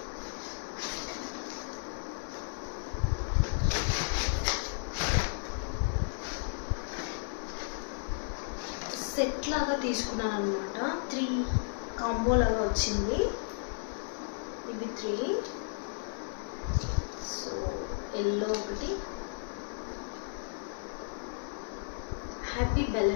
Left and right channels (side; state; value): right; silent; digital silence